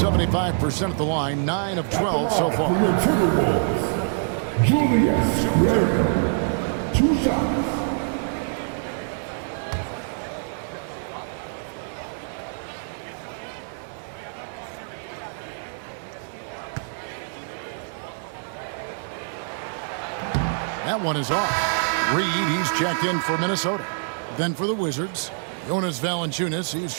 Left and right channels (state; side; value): silent; left; 57 dB below the other